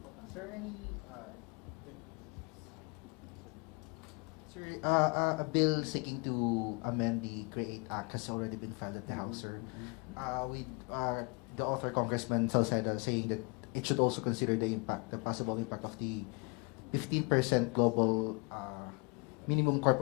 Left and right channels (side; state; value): right; quieter; 31.9 dB